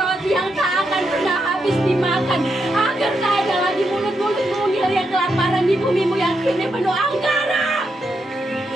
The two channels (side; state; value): both; normal; correlation 0.82